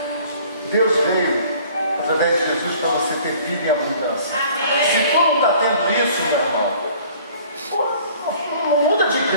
Deus veio, através de Jesus, para você ter vida e abundância. Se tu não está tendo isso, meu irmão, não muda de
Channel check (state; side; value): inverted; both; correlation -0.53